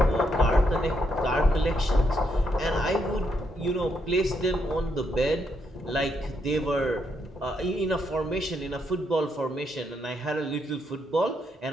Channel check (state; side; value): normal; both; correlation 0.78